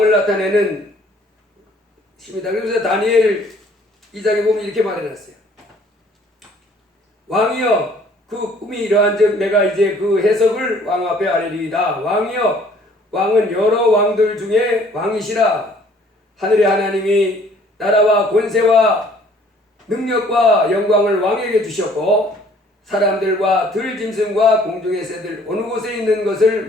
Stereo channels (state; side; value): normal; both; correlation 0.57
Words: 나타내는 것입니다. 그래서 다니엘 2장에 보면 이렇게 말해놨어요. 왕이여 그 꿈이 이러한즉 내가 이제 그 해석을 왕 앞에 아뢰리이다. 왕이여 왕은 여러 왕들 중에 왕이시라. 하늘의 하나님이 나라와 권세와 능력과 영광을 왕에게 주셨고 사람들과 들짐승과 공중의 새들 어느 곳에 있는 것을